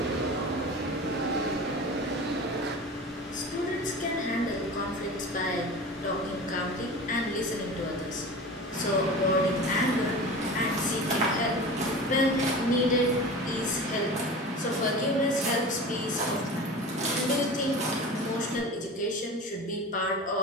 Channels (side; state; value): both; normal; correlation 0.34